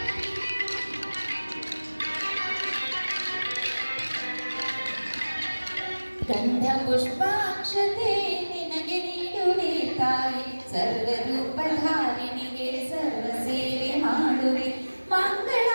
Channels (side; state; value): both; inverted; correlation -1.00